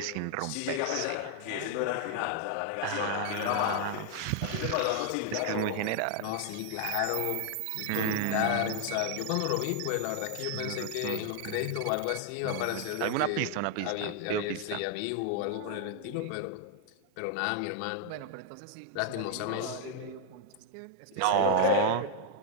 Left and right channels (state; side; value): different; both; correlation 0.00